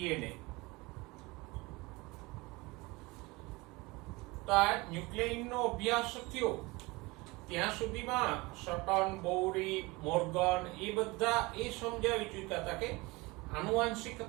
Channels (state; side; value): quieter; left; 23.7 dB